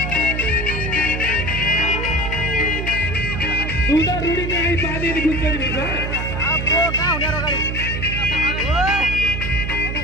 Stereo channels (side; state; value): right; noise; hum, 3 dB below the sound